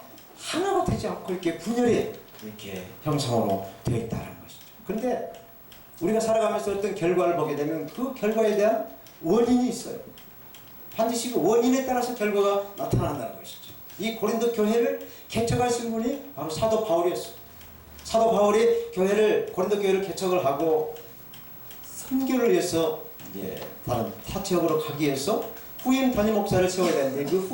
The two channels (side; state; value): both; identical; correlation 1.00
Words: 하나가 되지 않고 이렇게 분열이 이렇게 형상으로 되어 있다는 것이죠. 그런데 우리가 살아가면서 어떤 결과를 보게 되면 그 결과에 대한 원인이 있어요. 반드시 그 원인에 따라서 결과가 나타난다는 것이죠. 이 고린도 교회를 개척하신 분이 바로 사도 바울이었어요. 사도 바울이 고린도 교회를 개척을 하고 선교를 위해서 다른 타 지역으로 가기 위해서 후임 담임 목사를 세워야 되는데 그